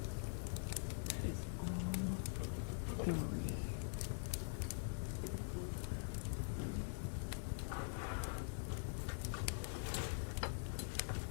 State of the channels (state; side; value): silent; right; digital silence